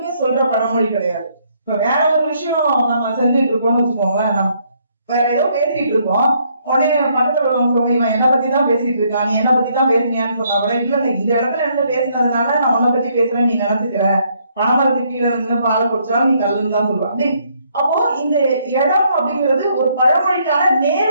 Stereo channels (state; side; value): inverted; both; correlation -0.70